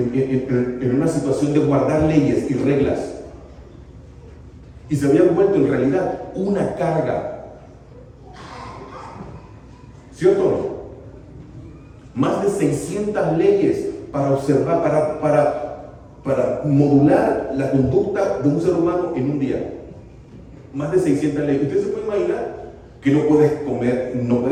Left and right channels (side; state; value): both; identical; correlation 1.00